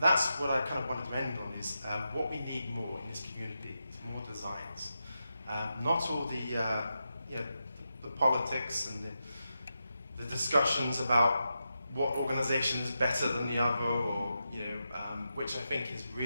what I kind of wanted to end on, is what we need more in this community is more designs. Not all the politics and the discussions about what organization is better than the other, or which I think is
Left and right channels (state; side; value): inverted; both; correlation -0.88